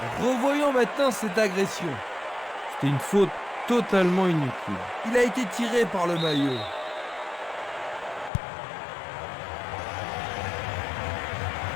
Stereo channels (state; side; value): drops out; right; at 8.3 s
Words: Revoyons maintenant cette agression. C'était une faute totalement inutile. Il a été tiré par le maillot.